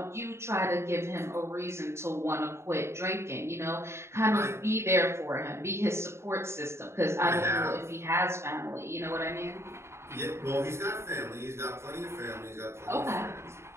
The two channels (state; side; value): late; left; 0.13 ms